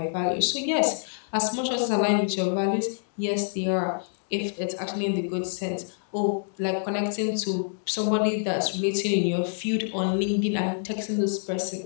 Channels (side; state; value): right; silent; digital silence